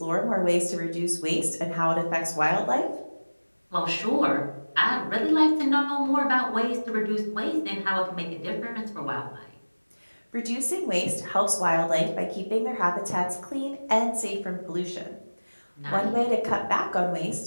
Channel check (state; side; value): inverted; both; correlation -1.00